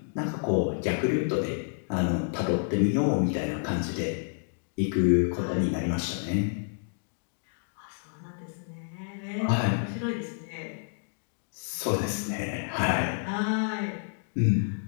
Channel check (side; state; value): right; silent; digital silence